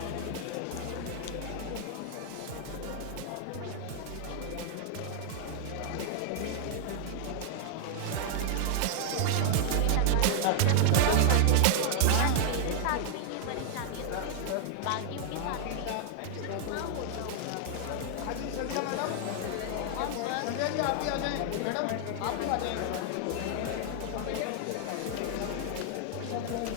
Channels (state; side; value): different; both; correlation 0.00